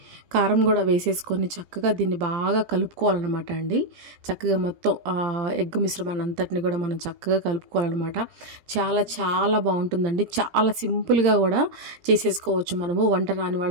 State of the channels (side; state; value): left; late; 17 ms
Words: కారం కూడా వేసేసుకొని చక్కగా దీన్ని బాగా కలుపుకోవాలన్నమాట అండి. చక్కగా మొత్తం ఎగ్ మిశ్రమాన్ని అంతటిని కూడా మనం చక్కగా కలుపుకోవాలన్నమాట. చాలా బాగుంటుందండి. చాలా సింపుల్గా కూడా చేసేసుకోవచ్చు మనము. వంట రాని